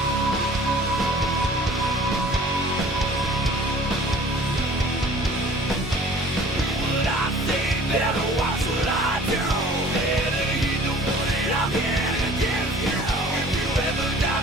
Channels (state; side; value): normal; both; correlation 0.49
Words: What I say, better watch what I do. Better heed the warning I'm here to give you. If you ever